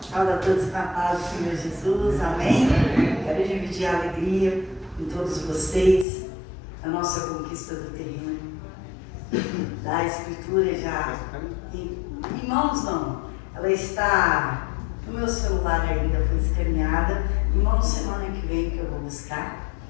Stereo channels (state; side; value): drops out; right; at 6.1 s